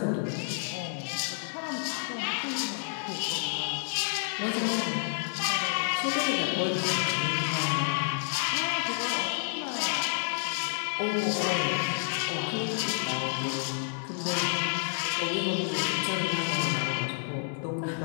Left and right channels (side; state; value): right; silent; 58 dB below the other